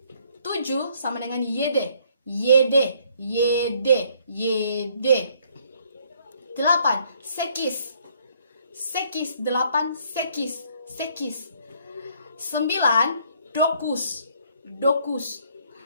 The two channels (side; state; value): both; inverted; correlation -0.65